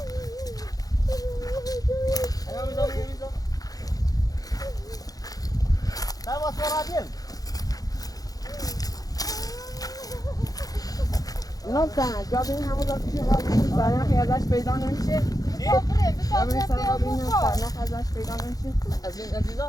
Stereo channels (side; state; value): right; late; 0.18 ms